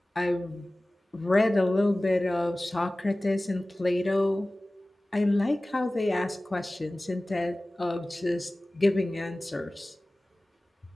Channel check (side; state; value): both; normal; correlation 0.98